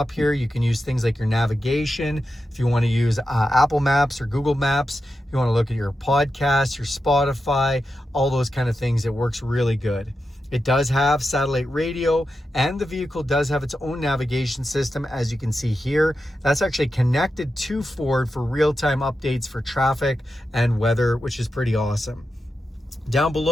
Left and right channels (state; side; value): normal; both; correlation 0.89